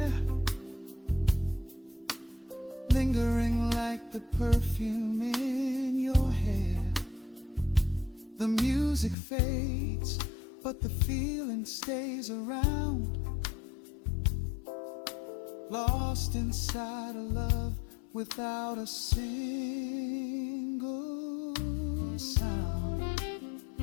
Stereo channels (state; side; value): drops out; right; at 9.2 s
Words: lingering like the perfume in your hair. The music fades, but the feeling stays around, lost inside a love without a single sound.